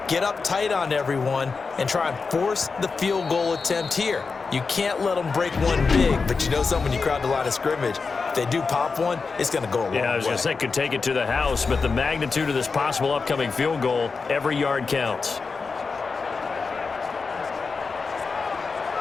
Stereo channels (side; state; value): right; quieter; 4.7 dB